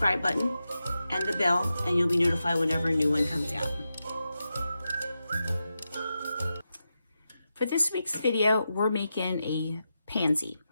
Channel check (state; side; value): inverted; both; correlation -0.89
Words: button and the bell and you'll be notified whenever a new one comes out. For this week's video, we're making a pansy.